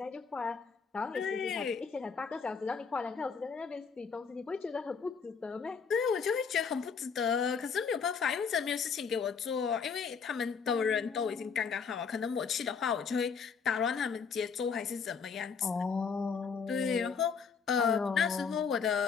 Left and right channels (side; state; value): right; quieter; 5.9 dB